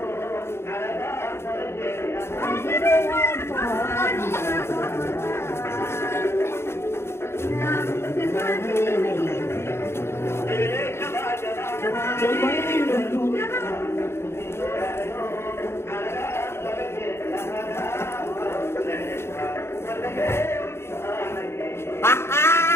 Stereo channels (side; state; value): right; late; 0.12 ms